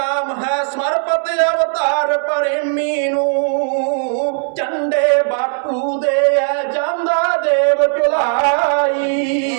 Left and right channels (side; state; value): left; silent; 66 dB below the other